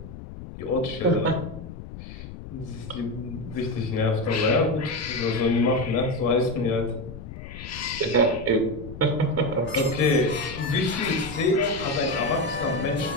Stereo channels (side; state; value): left; noise; rumble, 12 dB below the sound